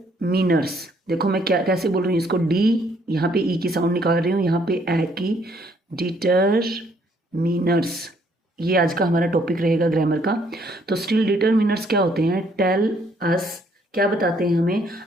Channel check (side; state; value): both; normal; correlation 0.66